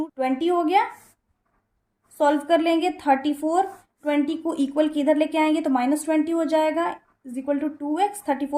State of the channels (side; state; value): both; identical; correlation 1.00